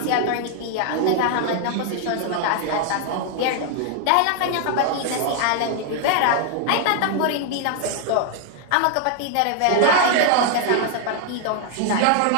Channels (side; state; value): both; different; correlation 0.00